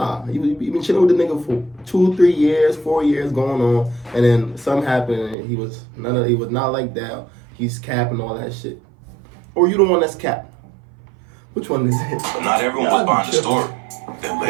you been chilling with the nigga for 2, 3 years, 4 years going on, and then something happened, and he was not like that. He's capping all that shit, or you the one that's capped. Which one is it? But not everyone was behind the story. Then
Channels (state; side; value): drops out; left; at 5.4 s